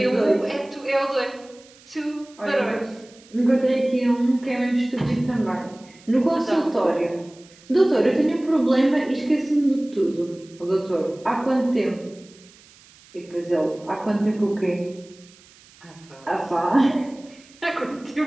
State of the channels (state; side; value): noise; right; hiss, 26 dB below the sound